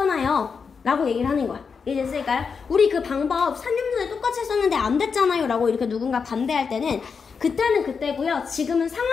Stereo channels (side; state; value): right; quieter; 5.7 dB